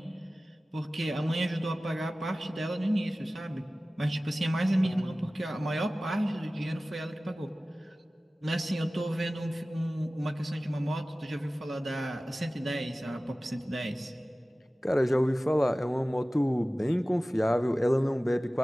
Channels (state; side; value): normal; both; correlation 0.97